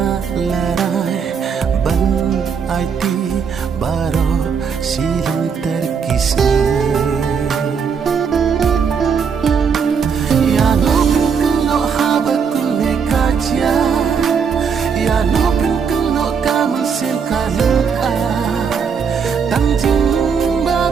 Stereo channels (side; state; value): left; quieter; 6.4 dB